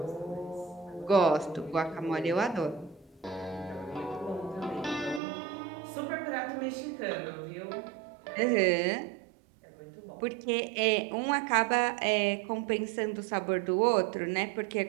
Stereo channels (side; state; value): left; drops out; at 5.2 s